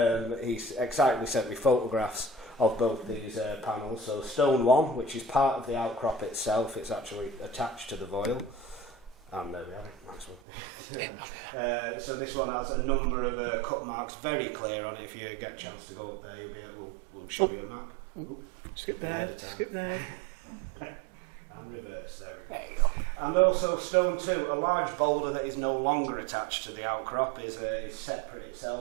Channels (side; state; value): left; drops out; at 10.4 s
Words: and he excitedly sent me photographs of both these panels. So stone one, which is part of the outcrop itself, it's actually attached to the Foil, and there we have it. Nice one. So this one has a number of cut marks, very clear on it. If you get a chance to go up there, we'll show you a map. Skip there. And reverse, there we go. And also stone 2, a large boulder that is no longer attached to the outcrop, is separate